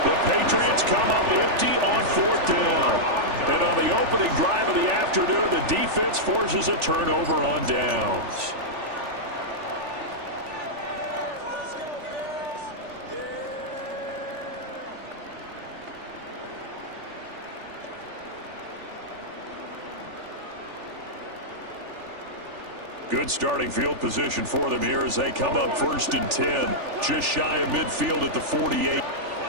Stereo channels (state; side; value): late; left; 3.4 ms